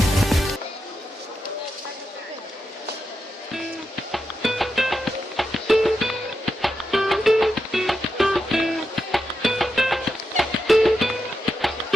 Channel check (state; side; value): normal; both; correlation 0.87